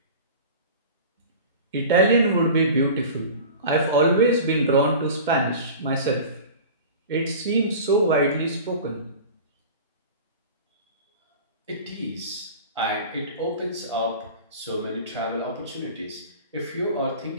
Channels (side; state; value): both; inverted; correlation -0.36